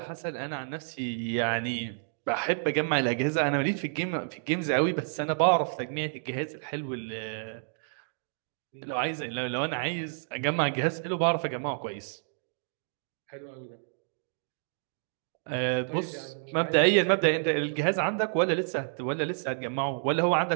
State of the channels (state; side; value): silent; left; digital silence